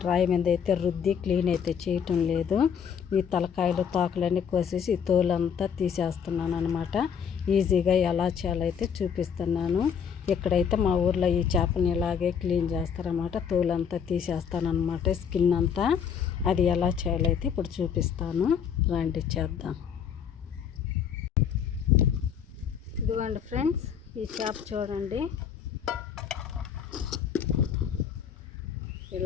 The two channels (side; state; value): right; quieter; 7.6 dB